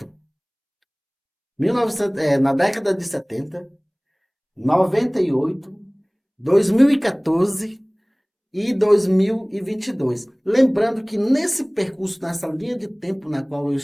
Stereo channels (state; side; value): identical; both; correlation 1.00